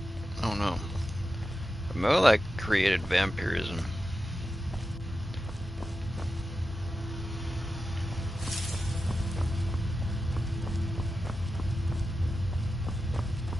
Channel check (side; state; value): both; normal; correlation 0.91